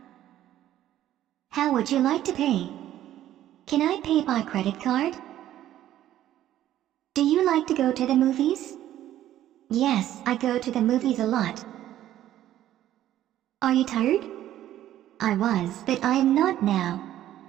How would you like to pay? Can I pay by credit card? Do you like to go to the movies? Yes, I go to the movies a lot. Are you tired? I was, but I am not now.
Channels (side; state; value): left; quieter; 12.7 dB